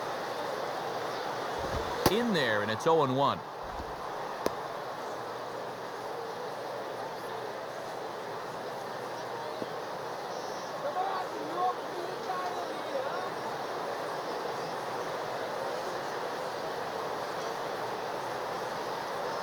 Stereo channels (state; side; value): identical; both; correlation 1.00